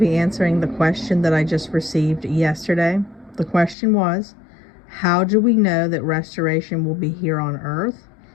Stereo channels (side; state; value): right; drops out; at 3.8 s